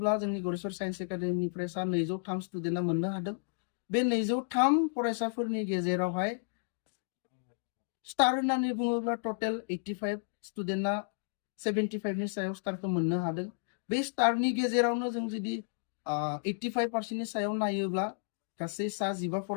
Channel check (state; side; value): silent; right; digital silence